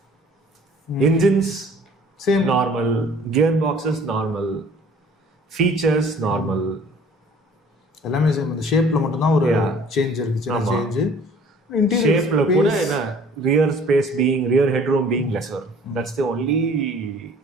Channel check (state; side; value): normal; both; correlation 0.52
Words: Engines same, normal. Gearboxes normal. Features normal. எல்லாமே same. அந்த ஷேப்ல மட்டும் தான் ஒரு change இருக்கு, சின்ன change. ஷேப்ல கூட என்ன rear space being, rear headroom being lesser. That's the only